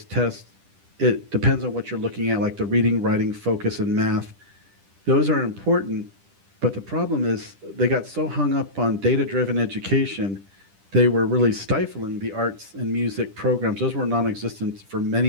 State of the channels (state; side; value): late; left; 10 ms